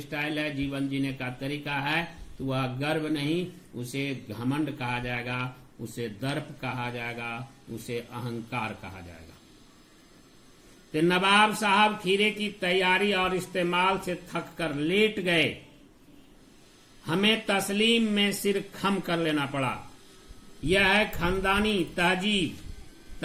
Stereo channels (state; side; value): identical; both; correlation 1.00